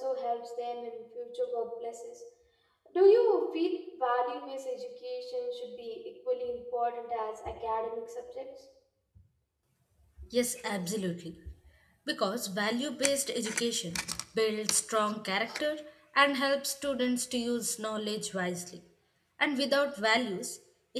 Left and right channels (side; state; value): both; identical; correlation 1.00